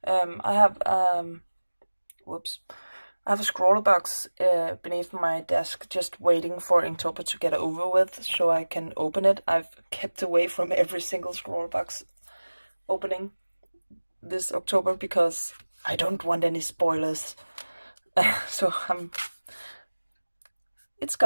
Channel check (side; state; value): both; inverted; correlation -1.00